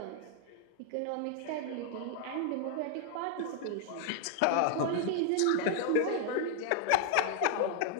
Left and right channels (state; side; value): different; both; correlation 0.00